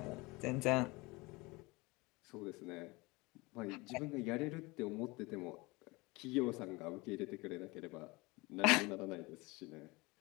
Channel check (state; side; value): quieter; right; 24.0 dB